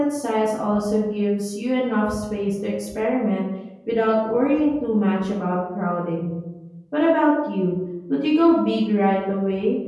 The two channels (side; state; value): both; identical; correlation 1.00